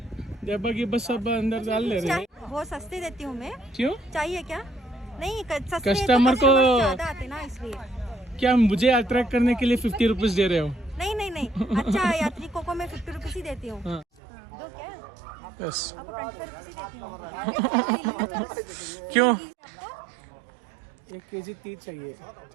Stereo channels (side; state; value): left; drops out; at 14.1 s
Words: वो सस्ती देती हूँ मैं. क्यों? चाहिए क्या? नहीं कस्टमर को ज्यादा आते ना इसलिए. क्या मुझे अट्रैक्ट करने के लिए 50 रुपीज दे रहे हो? नहीं नहीं नहीं अच्छा यात्रिकों को मैं 50 रुपीज ही देती हूँ. हाँ. दो क्या? यस. आपको 25 रुपीज ही देती हूँ. क्यों? 1 केजी तीज चाहिए.